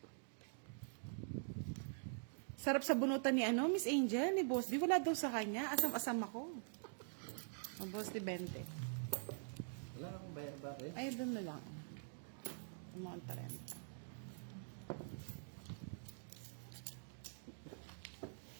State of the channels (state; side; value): silent; left; digital silence